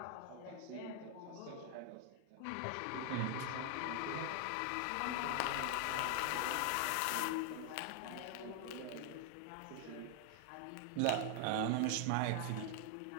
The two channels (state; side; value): different; both; correlation 0.00